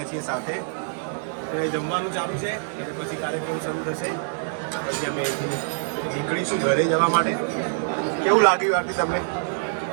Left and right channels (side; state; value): left; silent; 62 dB below the other